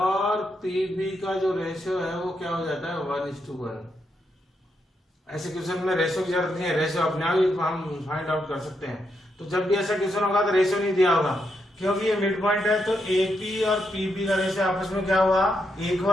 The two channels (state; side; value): normal; both; correlation 0.81